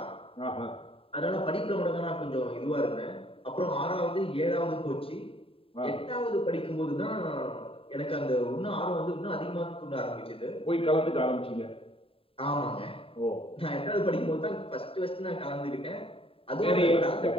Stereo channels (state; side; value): late; right; 0.27 ms